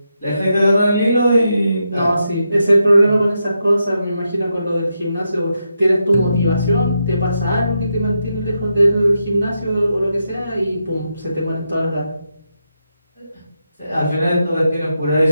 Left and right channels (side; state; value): both; inverted; correlation -0.84